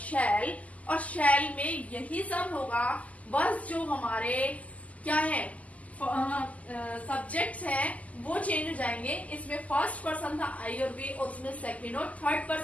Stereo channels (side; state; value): right; late; 0.072 ms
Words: और शैल में यही सब होगा, बस जो हमारे क्या है सब्जेक्ट्स हैं वो चेंज हो जाएंगे। इसमें फर्स्ट पर्सन था आई और वी, और उसमें सेकंड और थर्ड